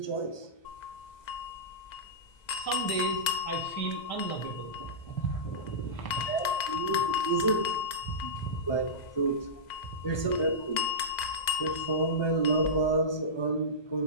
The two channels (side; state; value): right; late; 2.0 ms